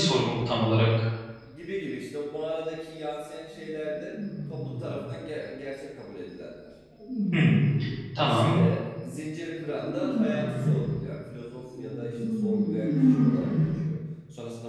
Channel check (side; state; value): both; identical; correlation 1.00